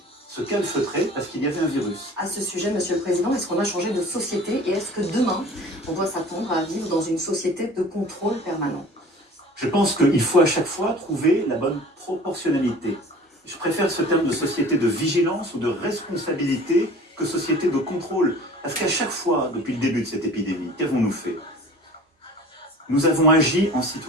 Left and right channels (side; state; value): both; normal; correlation 0.44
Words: se calfeutrer, parce qu'il y avait un virus. À ce sujet, Monsieur le Président, est-ce qu'on a changé de société et est-ce que demain, on doit s'attendre à vivre dans une société de contrôle permanent? Je pense qu'il faut à chaque fois trouver la bonne proportionnalité. Je préfère ce terme de société de vigilance ou de responsabilité que société de contrôle. Parce qu'à chaque fois, depuis le début de cette épidémie, qu'avons-nous fait? Nous avons agi en